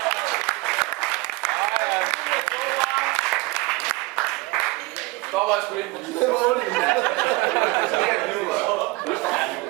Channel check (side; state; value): left; quieter; 22.4 dB